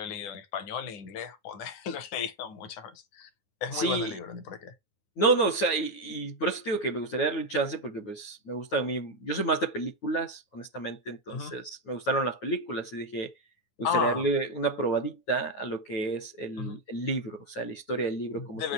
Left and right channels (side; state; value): right; late; 9.6 ms